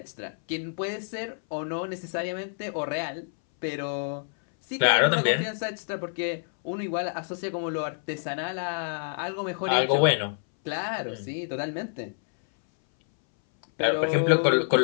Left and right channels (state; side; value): silent; right; 60 dB below the other